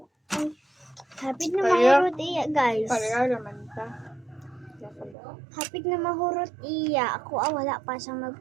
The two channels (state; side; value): drops out; left; at 5.2 s